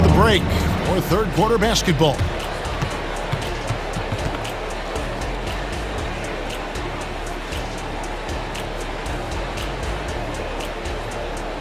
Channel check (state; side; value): identical; both; correlation 1.00